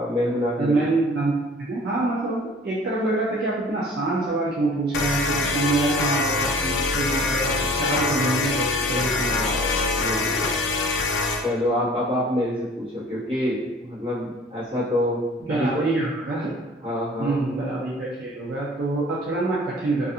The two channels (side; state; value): both; normal; correlation 0.48